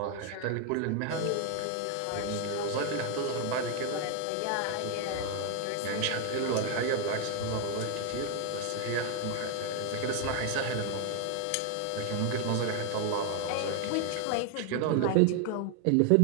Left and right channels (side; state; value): both; different; correlation 0.00